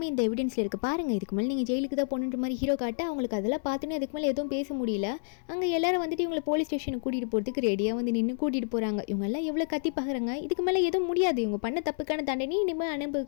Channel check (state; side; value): silent; right; 58 dB below the other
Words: இந்த எவிடன்ஸில் இருக்குது பாருங்கள், இதுக்கு மேலே நீங்கள் ஜெயிலுக்கு தான் போகணுன்ற மாதிரி ஹீரோ காட்ட அவங்களுக்கு அதெல்லாம் பார்த்துன்னு அதுக்கு மேலே எதுவும் பேச முடியல. அங்கே எல்லாரும் வந்துட்டு இவங்களை போலீஸ் ஸ்டேஷனுக்கு கூட்டிகிட்டு போகிறதுக்கு ரெடியாக வந்து நின்று கூட்டிகிட்டு போகிறாங்க. இவங்க எல்லாம் எவ்வளோ கத்தி பார்க்குறாங்க, இதுக்கு மேலே எதுவும் முடியாது, இவங்க பண்ண தப்புக்கான தண்டனை இனிமேல்